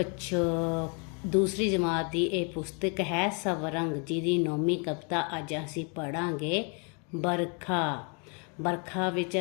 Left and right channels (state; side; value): quieter; right; 36.4 dB